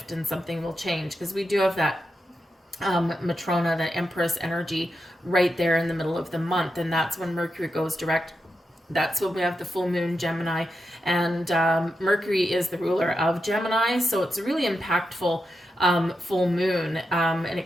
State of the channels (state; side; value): normal; both; correlation 0.88